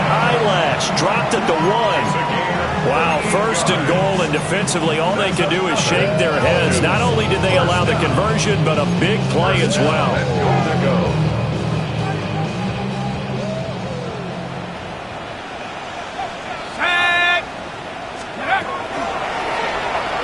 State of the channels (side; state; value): both; identical; correlation 1.00